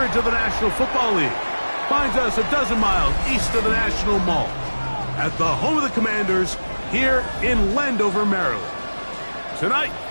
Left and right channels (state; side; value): inverted; both; correlation -1.00